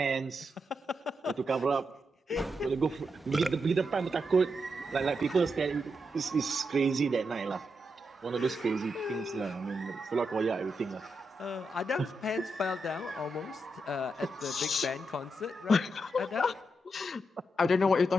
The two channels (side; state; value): both; normal; correlation 0.84